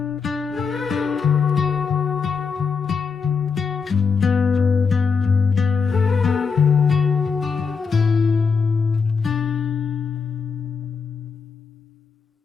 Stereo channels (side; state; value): right; quieter; 5.5 dB